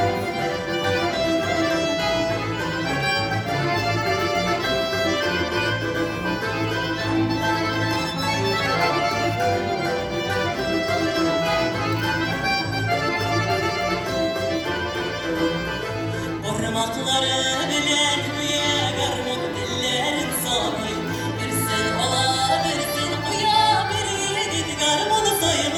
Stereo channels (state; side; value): identical; both; correlation 1.00